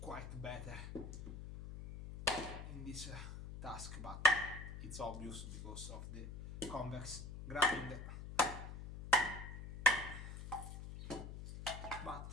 better in this task, but it's obvious because of the convex grind.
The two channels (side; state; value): left; noise; hum, 9 dB below the sound